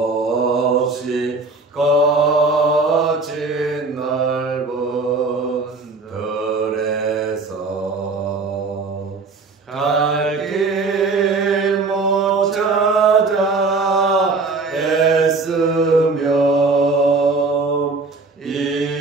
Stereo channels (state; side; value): quieter; left; 3.8 dB